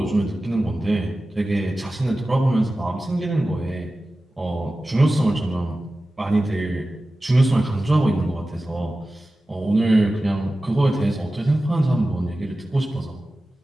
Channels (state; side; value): normal; both; correlation 0.95